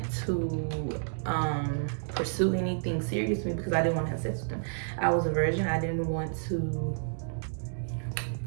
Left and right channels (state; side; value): silent; left; digital silence